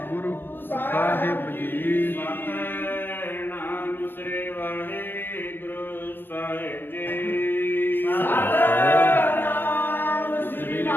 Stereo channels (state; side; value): late; right; 0.099 ms